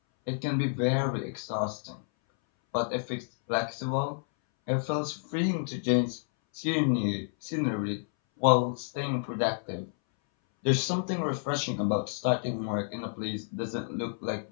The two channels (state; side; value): silent; right; 58 dB below the other